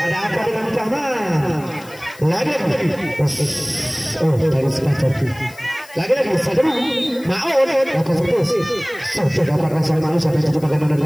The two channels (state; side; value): noise; left; hiss, 22 dB below the sound